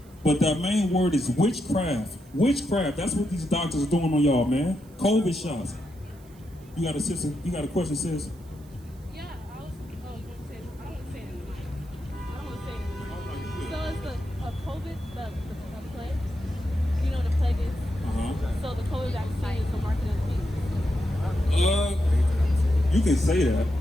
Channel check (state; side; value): noise; right; hiss, 28 dB below the sound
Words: But that main word is witchcraft. Witchcraft. That's what these doctors are doing on y'all, man. COVID shots. You got a sister? You got a question, sis? Yeah, I was going to say, I don't want to say it anymore. I don't want to say it anymore. So it's the COVID, the plague. You know what the plague is? So the COVID vaccine is the market of the beast. You can say that.